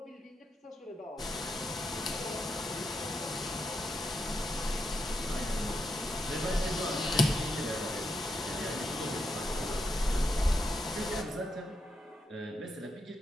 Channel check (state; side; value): normal; both; correlation 0.83